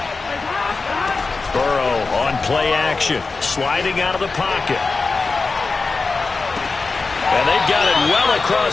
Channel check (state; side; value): quieter; right; 4.1 dB